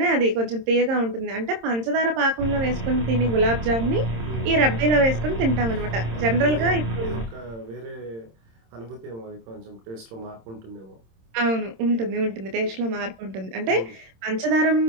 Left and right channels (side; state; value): left; late; 26 ms